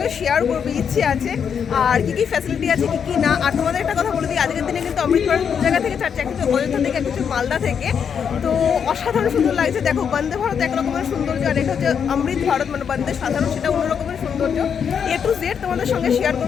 শেয়ার করবো, ইচ্ছে আছে আর কী কী ফ্যাসিলিটি আছে কী কী না। আর তোমাদের একটা কথা বলে দিই, আজকের দিনে কিন্তু অমৃতসর দু জায়গা থেকে ছাড়ছে, কিছু অযোধ্যা থেকে কিছু মালদা থেকে। তো অসাধারণ সুন্দর লাগছে। দেখো, বন্দে ভারত এক রকমের সৌন্দর্য, আর এটা হচ্ছে অমৃত ভারত মানে বন্দে সাধারণ, সেটা অন্য রকমের সৌন্দর্য। A to Z তোমাদের সঙ্গে শেয়ার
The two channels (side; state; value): right; quieter; 7.3 dB